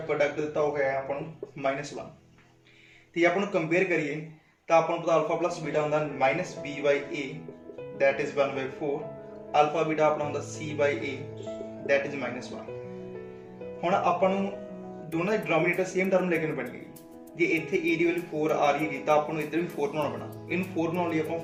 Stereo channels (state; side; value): identical; both; correlation 1.00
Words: ਦਿੱਤਾ ਹੋ ਗਿਆ ਆਪਾਂ ਨੂੰ -1 ਤੇ ਆਪਾਂ ਨੂੰ ਕੰਪੇਅਰ ਕਰੀਏ ਤਾਂ ਆਪਾਂ ਨੂੰ ਪਤਾ ਅਲਫਾ ਪਲੱਸ ਬੀਟਾ ਹੁੰਦਾ -b/a that is 1/4 ਅਲਫਾ ਬੀਟਾ ਆਪਣਾ ਹੁੰਦਾ c/a that is -1। ਹੁਣ ਆਪਾਂ ਨੂੰ ਦੋਨਾਂ ਦੇ ਡਿਨੋਮੀਨੇਟਰ ਸੇਮ ਟਰਮ ਲੈ ਕੇ ਪੈਣੀ ਹੈ। ਜੇ ਇੱਥੇ a ਦੀ ਵੈਲਿਊ 4 ਆ ਰਹੀ ਹੈ ਤਾਂ ਆਪਾਂ ਨੂੰ ਇੱਧਰ ਵੀ 4 ਬਣਾਉਣਾ ਪੈਣਾ। ਇਹਨੂੰ 4 ਬਣਾਉਣ ਲਈ ਆਪਾਂ